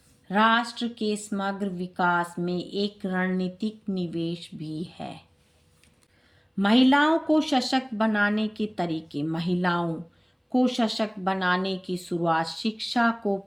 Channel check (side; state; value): both; identical; correlation 1.00